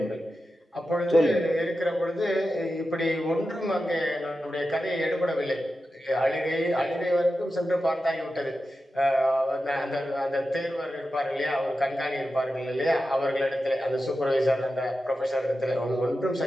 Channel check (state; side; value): normal; both; correlation 0.91